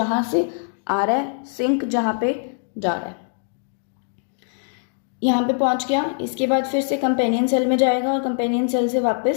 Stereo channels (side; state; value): right; silent; digital silence